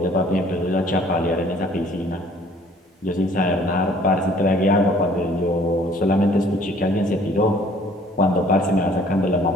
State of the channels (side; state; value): both; normal; correlation 0.56